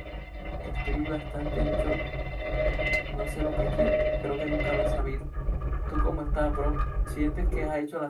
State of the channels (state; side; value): identical; both; correlation 1.00